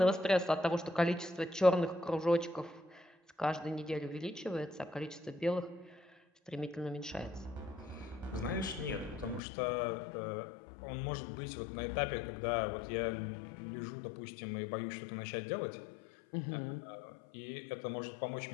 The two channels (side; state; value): right; drops out; at 9.4 s